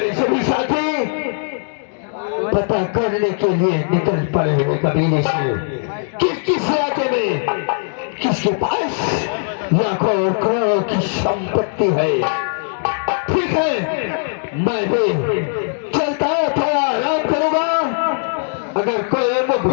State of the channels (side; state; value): right; silent; digital silence